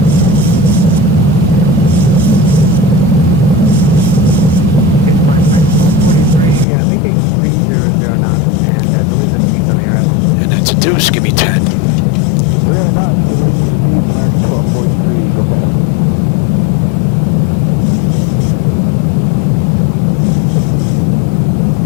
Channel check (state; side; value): drops out; right; at 6.7 s